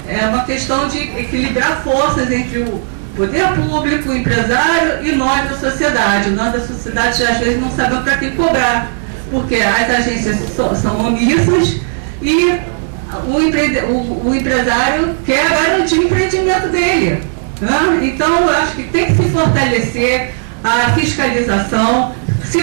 uma questão de equilibrar forças entre o poder público, o empresário e nós da sociedade. Nós da sociedade às vezes não sabemos para quem cobrar, porque as agências são omissas e o empresário quer garantir o empreendimento dele, né? Então eu acho que tem que se fortalecer a fiscalização. Se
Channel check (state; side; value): silent; left; digital silence